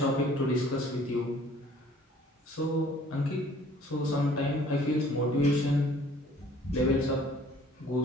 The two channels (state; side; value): normal; both; correlation 0.55